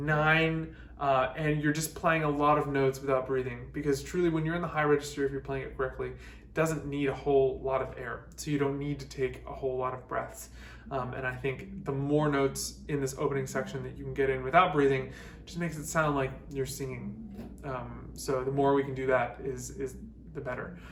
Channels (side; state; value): both; identical; correlation 1.00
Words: and you're just playing a lot of notes without breathing, because truly when you're in the high register, if you're playing it correctly, it doesn't need a whole lot of air, so you don't need to take a whole lot of breaths. And I think the more notes in this opening section that you can get in without breathing just makes it sound like you're singing. So the more we can do that is the better.